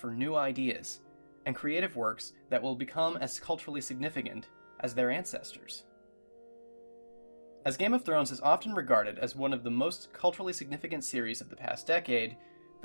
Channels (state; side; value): inverted; both; correlation -1.00